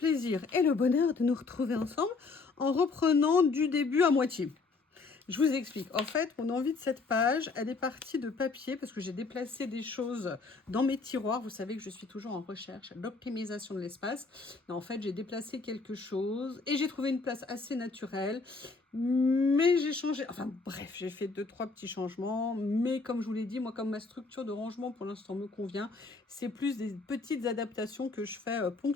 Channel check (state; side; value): quieter; right; 4.1 dB